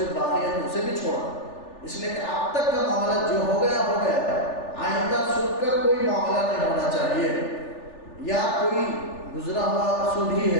باقی ہے تو اسے بھی چھوڑا، اس لیے کہ اب تک کا معاملہ جو ہو گیا آئندہ سود کا کوئی معاملہ نہیں ہونا چاہیے، یا کوئی گزرا ہوا سود ہی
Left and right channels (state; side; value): late; right; 3.4 ms